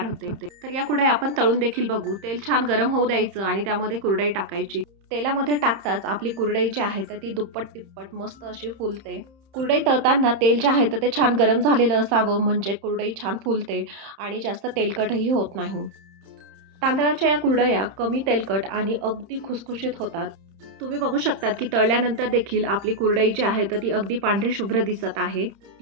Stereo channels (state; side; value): late; left; 30 ms